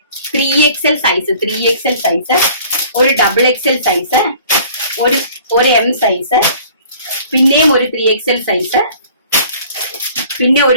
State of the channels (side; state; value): both; inverted; correlation -0.51